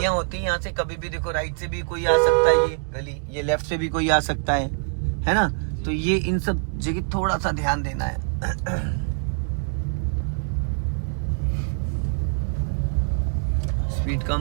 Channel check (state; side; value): silent; left; digital silence